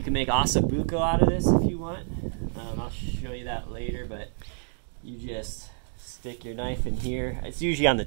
can make ossobuco out of this if you want. I'll show you that later, but you just stick your knife in here. It's usually on the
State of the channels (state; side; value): silent; left; digital silence